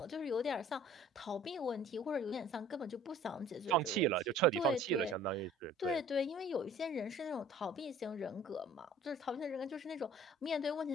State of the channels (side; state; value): both; normal; correlation 0.50